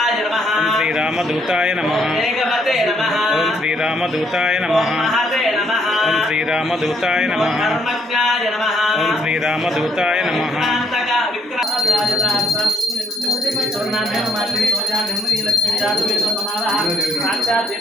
నమః శ్రీరామదూతాయ నమః వేగవతే నమః ఓం శ్రీరామదూతాయ నమః మహతే నమః ఓం శ్రీరామదూతాయ నమః ధర్మజ్ఞాయ నమః ఓం శ్రీరామదూతాయ నమః విక్రాంతక విగ్రహరాజదార్థం స్వర్ణాభ్యం మాత్రం సోజాభ్యం నీలక్ష్మీ జాతవేదో నమః సాక్షాత్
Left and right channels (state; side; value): normal; both; correlation 0.72